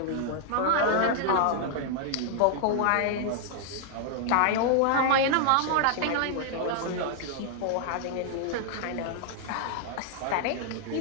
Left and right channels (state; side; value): different; both; correlation -0.01